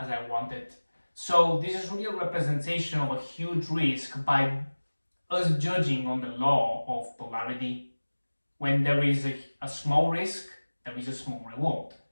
I wanted. So this is really a representation of a huge risk by us judging on the law of polarity. When there is a small risk, there is a small reward.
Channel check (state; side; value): inverted; both; correlation -1.00